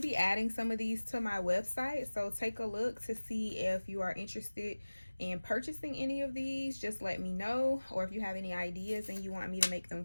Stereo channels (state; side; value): inverted; both; correlation -1.00